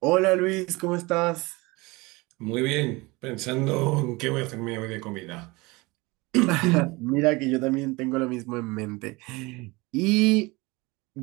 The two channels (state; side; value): quieter; left; 23.8 dB